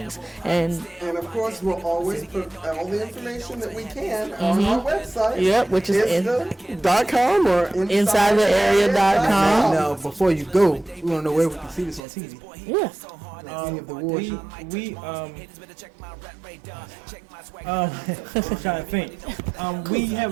And of course, we'll always put all the information that we can on our website. Yep, which is .com or InsideTheArea.com. Now, before you go, we want to know where we can see this on TV. Yeah. Any of the awards. I'm trying to think. We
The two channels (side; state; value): left; drops out; at 12.0 s